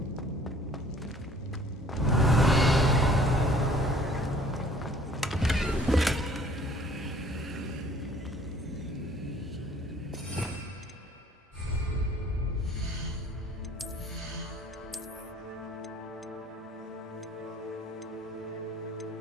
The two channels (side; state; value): both; normal; correlation 0.54